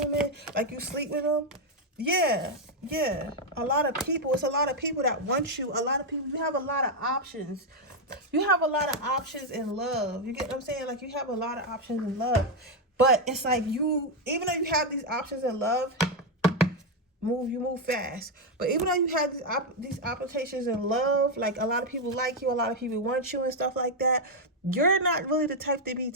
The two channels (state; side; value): normal; both; correlation 0.02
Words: like, you sleep with them? Yeah. A lot of people. It's a lot of people that want you. A lot of people. You have a lot of options. You have a lot of options in love. You get what I'm saying? Like, you have a lot of options in love. But it's like even though you have these options in love, you move fast. But even though you have these applications in love, like a lot of people like you, a lot of people want you and stuff like that, you're not really the type to be